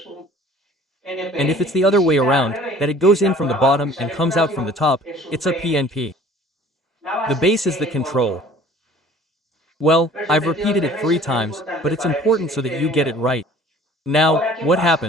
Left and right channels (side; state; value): both; normal; correlation 0.50